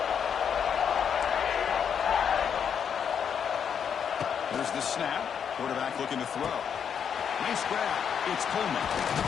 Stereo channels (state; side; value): quieter; right; 7.6 dB